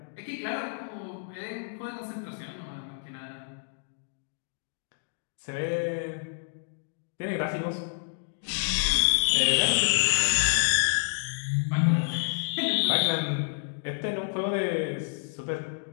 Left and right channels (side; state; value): right; silent; digital silence